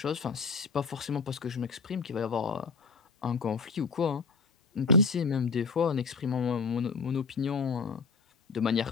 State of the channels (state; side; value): quieter; right; 4.8 dB